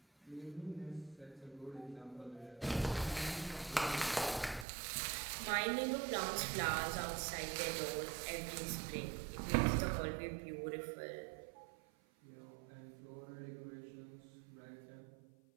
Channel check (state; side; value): drops out; left; at 4.7 s